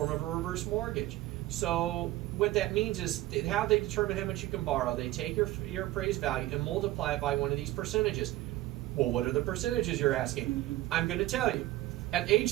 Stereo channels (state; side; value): quieter; left; 16.6 dB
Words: of a reverse mortgage. So what that means is how they determine how much you can borrow. They take your appraised value and multiply it by one of these percentages. Well, what are the percentages, you're asking? I'm going to tell you. At age